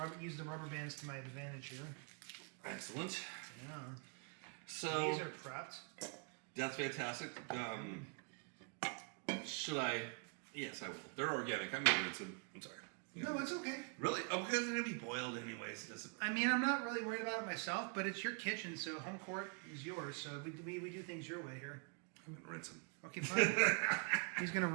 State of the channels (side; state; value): left; quieter; 36.9 dB